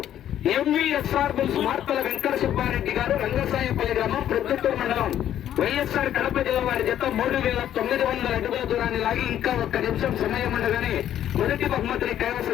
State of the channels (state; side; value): quieter; right; 11.1 dB